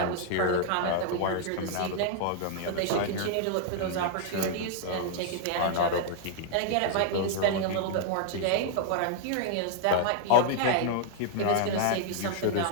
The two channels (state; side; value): different; both; correlation -0.01